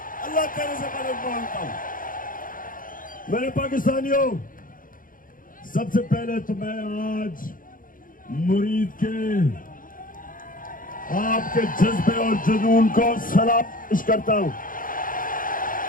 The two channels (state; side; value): late; right; 0.40 ms